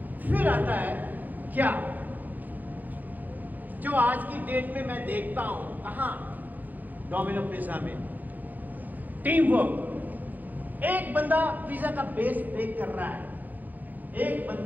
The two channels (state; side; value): late; left; 0.083 ms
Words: फिर आता है क्या जो आज की डेट में मैं देखता हूं कहां डोमिनो पिज्जा में टीम वर्क एक बंदा पिज्जा का बेस बेक कर रहा है एक